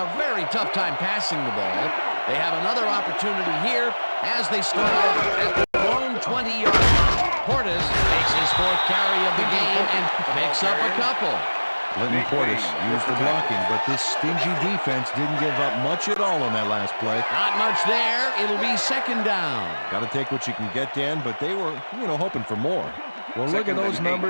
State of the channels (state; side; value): inverted; both; correlation -1.00